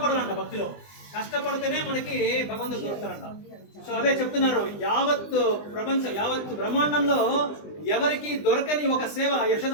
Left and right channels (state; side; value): late; right; 20 ms